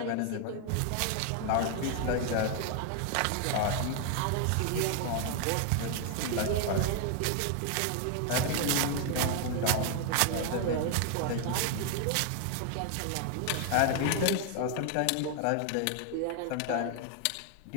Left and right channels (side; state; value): both; different; correlation 0.00